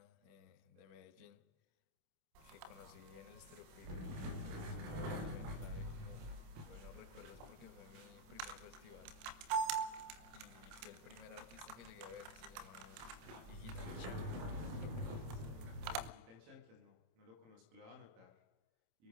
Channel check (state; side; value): late; left; 27 ms